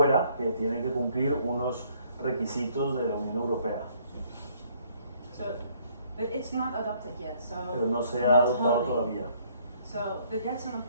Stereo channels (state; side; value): inverted; both; correlation -0.64